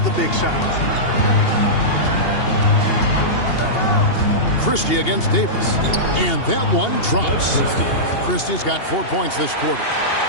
big shots. Christie against Davis. And that one drops. Christie's got 4 points this quarter.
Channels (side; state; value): right; late; 2.8 ms